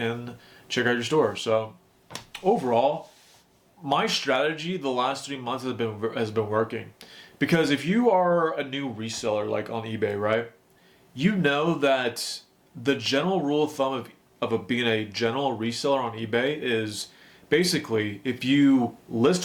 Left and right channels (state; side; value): identical; both; correlation 1.00